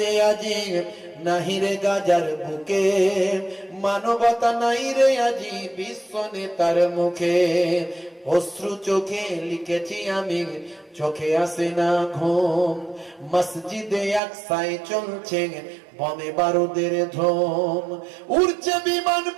আজি, নাহি রে গাজার বুকে, মানবতা নাই রে আজি বিশ্ব নেতার মুখে। অশ্রু চোখে লিখেছি আমি, চোখে আসে না ঘুম, মসজিদে আকসায় চলছে বোমে বারুদের ধুম। উড়ছে বিমান,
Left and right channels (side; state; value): left; drops out; at 14.2 s